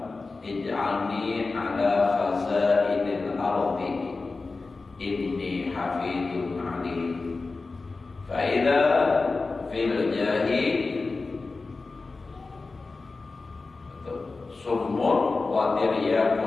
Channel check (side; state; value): right; quieter; 3.8 dB